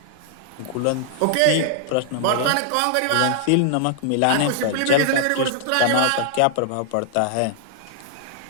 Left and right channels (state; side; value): different; both; correlation -0.01